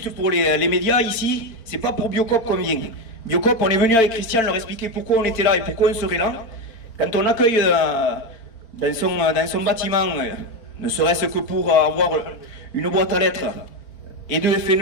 pour les médias ici, c'est pas pour Biocop qu'on vient. Biocop, on est venu avec Christian leur expliquer pourquoi on était là et pourquoi on serait là. Quand on accueille dans son bâtiment, ne serait-ce que pour avoir une boîte à lettres et de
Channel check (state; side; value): late; right; 4.4 ms